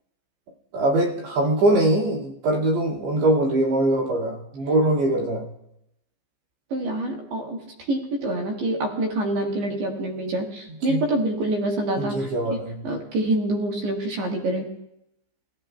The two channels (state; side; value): late; left; 15 ms